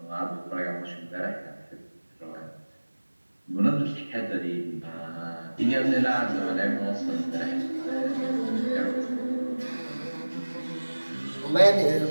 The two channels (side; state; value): both; inverted; correlation -1.00